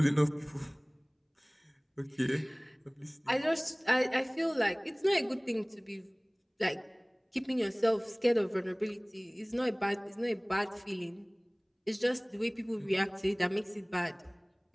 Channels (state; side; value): identical; both; correlation 1.00